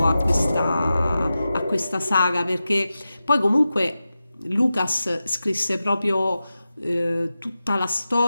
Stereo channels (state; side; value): inverted; both; correlation -0.93